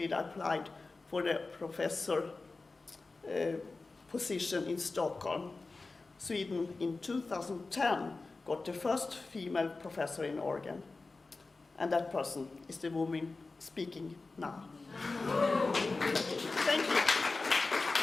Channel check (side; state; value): right; quieter; 3.7 dB